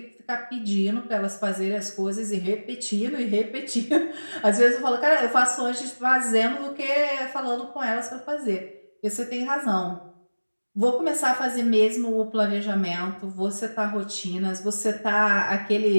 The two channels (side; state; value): both; inverted; correlation -1.00